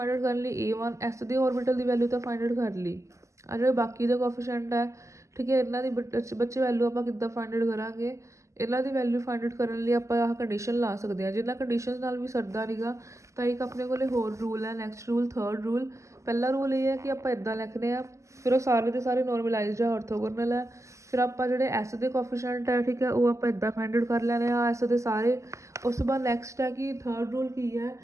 ਆਊਟ ਕਰਨ ਲਈ A1 S ਦੇ ਔਰਬਿਟਲ ਦੀ ਵੈਲਿਊ ਤਾਂ ਫਾਈਂਡ ਆਊਟ ਕਰ ਲਈ, ਆ ਜਿਹੜੇ ਬਾਕੀ ਦੇ ਕੋਫੀਸ਼ੀਐਂਟ ਹੈ, ਠੀਕ ਹੈ, ਇਹਨਾਂ ਦੀ ਬੱਚੇ ਵੈਲਿਊ ਆਪਾਂ ਕਿੱਦਾਂ ਫਾਈਂਡ ਆਊਟ ਕਰਾਂਗੇ। ਇਹਨਾਂ ਦੀ ਵੈਲਿਊ ਫਾਈਂਡ ਆਊਟ ਕਰਨ ਲਈ ਆਪਾਂ ਆਹ ਕੰਡੀਸ਼ਨ ਲਾ ਸਕਦੇ ਹਾਂ। ਜਿੰਨਾ ਕੰਡੀਸ਼ਨ ਨਾਲ ਵੀ ਸਰਦਾ ਨਹੀਂਗਾ ਤਾਂ ਇੱਕ ਆਪਣੇ ਕੋਲ ਹੋਰ ਰੂਲ ਹੈ। Next rule, third rule. ਪਹਿਲਾ ਰੂਲ ਇਹ ਹੈ ਕਿ ਆਪਾਂ ਇੱਦਾਂ ਲਿਖਦੇ ਹਾਂ, ਫਿਰ ਉਹ ਸਾਰੇ ਦੇ ਸਾਰੇ ਨੋਰਮਲਾਈਜ਼ਡ ਹੈ, ਔਰਥੋਗੋਨਲ ਹੈ। ਫਿਰ ਆਪਾਂ ਜਿਹੜੇ ਐਸ ਦੇ ਕੋਫੀਸ਼ੀਐਂਟ ਹੈ, ਠੀਕ ਹੈ, ਉਹ ਆਪਾਂ ਇੱਦਾਂ ਫਾਈਂਡ ਆਊਟ ਕਰ ਲੈਣੇ ਆ ਐਸ ਦੇ ਸਾਰੇ। ਉਸ ਤੋਂ ਬਾਅਦ ਨੈਕਸਟ ਹੈ ਕਿ ਥਰਡ ਰੂਲ ਕੀ ਹੈ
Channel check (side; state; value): left; late; 0.15 ms